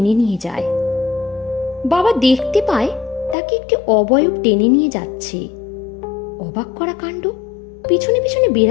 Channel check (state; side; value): drops out; right; at 3.4 s